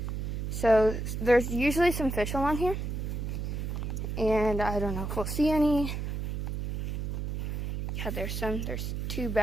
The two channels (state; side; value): noise; right; hum, 3 dB below the sound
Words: So there's usually some fish along here. And I don't know if we'll see any. Yeah, there's two